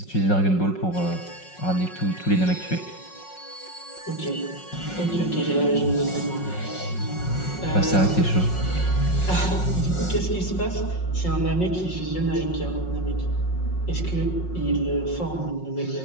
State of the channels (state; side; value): late; right; 5.5 ms